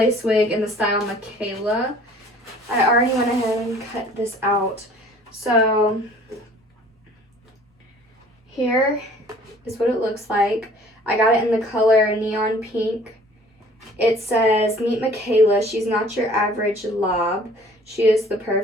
Wig in the style Makayla. I already went ahead and cut this out. So here is what it looks like. I got it in the color neon pink. It says, "Meet Makayla. She's not your average lob. She is the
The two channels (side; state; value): both; normal; correlation 0.52